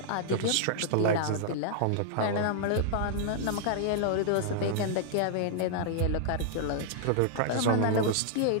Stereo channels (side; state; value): both; different; correlation -0.01